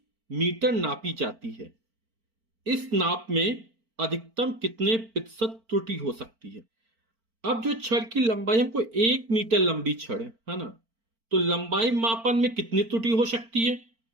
मीटर नापी जाती है। इस नाप में अधिकतम कितने प्रतिशत त्रुटि हो सकती है? अब जो छड़ की लंबाई, हमको 1 मीटर लंबी छड़ है ना, तो लंबाई मापन में कितनी त्रुटि हो सकती है?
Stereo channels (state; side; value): late; left; 4.4 ms